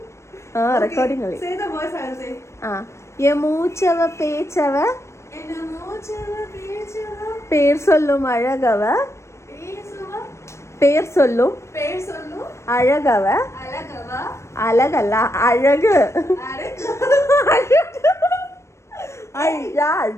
റെക്കോർഡിംഗ് കളി. യമൂച്ചവ പേച്ചവ പേർ சொல்லும் அழகவ பேர் சொல்லும் அழகவ அழகல்ல அழகு ஐயா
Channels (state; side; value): late; right; 0.13 ms